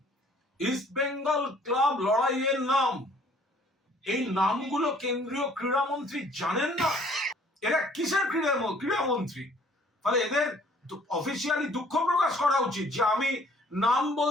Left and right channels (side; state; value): both; normal; correlation 0.58